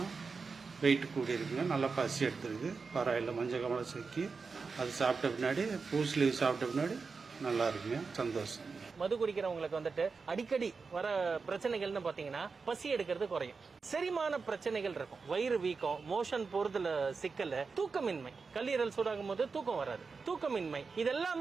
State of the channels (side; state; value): left; quieter; 4.8 dB